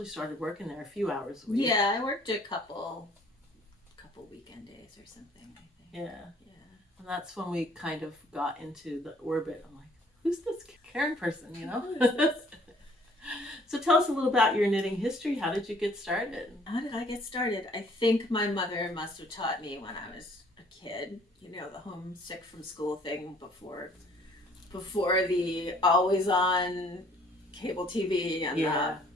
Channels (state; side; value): normal; both; correlation 0.58